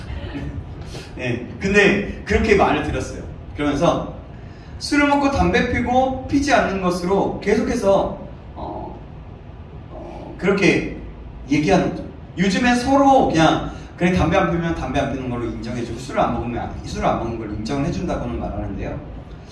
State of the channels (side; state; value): both; identical; correlation 1.00